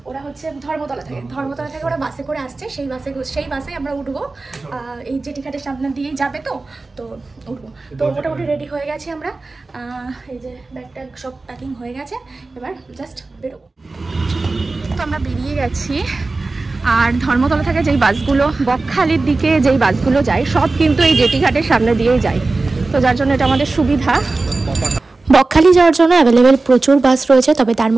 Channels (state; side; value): quieter; left; 3.5 dB